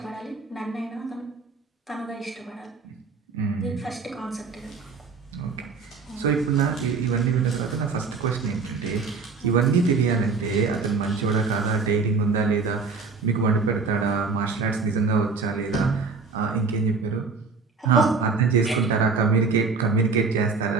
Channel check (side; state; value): left; quieter; 4.6 dB